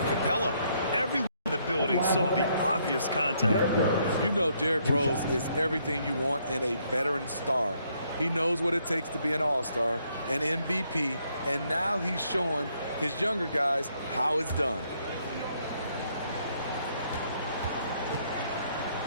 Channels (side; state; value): both; inverted; correlation -0.71